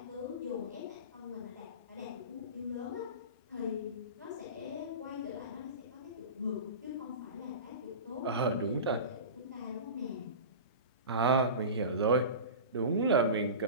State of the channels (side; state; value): both; inverted; correlation -0.31